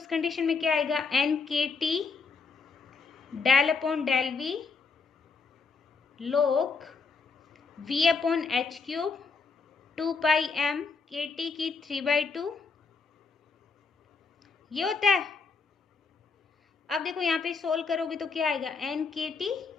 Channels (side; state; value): right; quieter; 4.9 dB